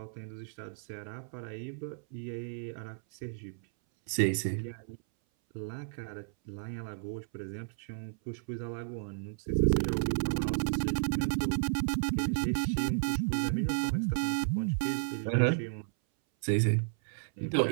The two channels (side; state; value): left; silent; 56 dB below the other